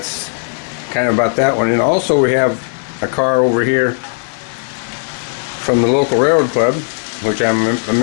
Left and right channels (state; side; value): silent; right; 69 dB below the other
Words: kind of about that one. And also we have a car over here from the local railroad club, which I'm a